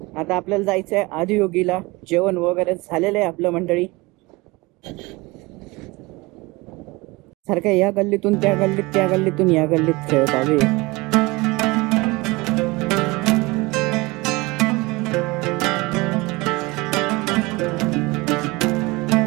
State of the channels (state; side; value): quieter; left; 23.5 dB